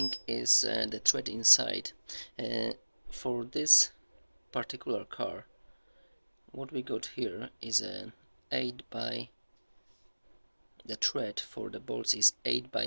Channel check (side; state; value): both; inverted; correlation -1.00